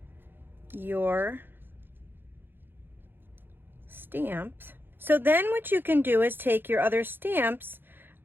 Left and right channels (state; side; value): late; left; 0.10 ms